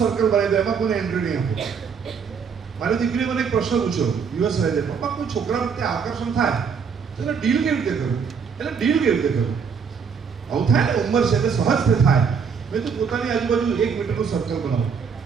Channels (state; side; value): quieter; left; 6.3 dB